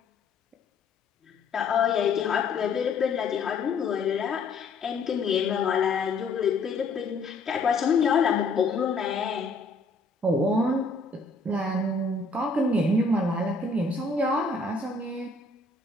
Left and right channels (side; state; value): right; quieter; 3.8 dB